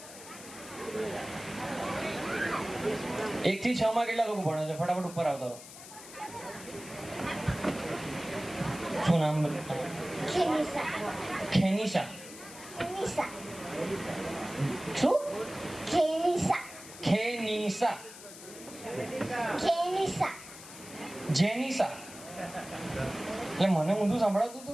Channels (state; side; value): noise; left; hiss, 15 dB below the sound